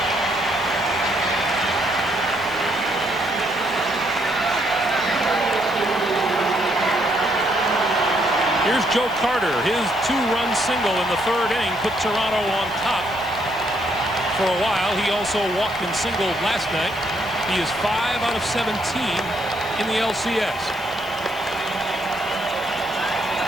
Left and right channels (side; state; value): left; noise; hiss, 21 dB below the sound